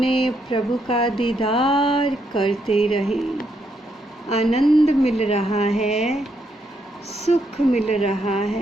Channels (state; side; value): normal; both; correlation 0.77